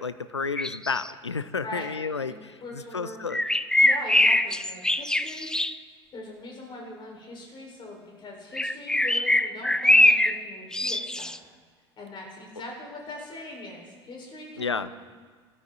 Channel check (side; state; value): both; normal; correlation 0.71